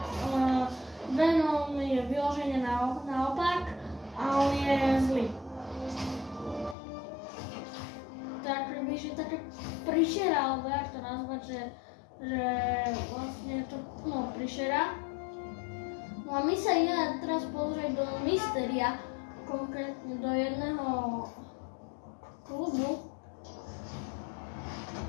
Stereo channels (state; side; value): drops out; right; at 6.8 s